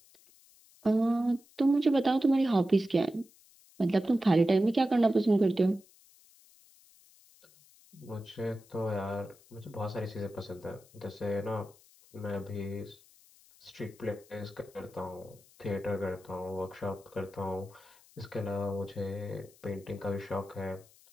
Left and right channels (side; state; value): left; noise; hiss, 27 dB below the sound